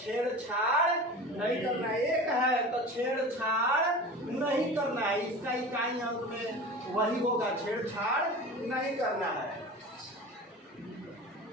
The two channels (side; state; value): both; normal; correlation 0.34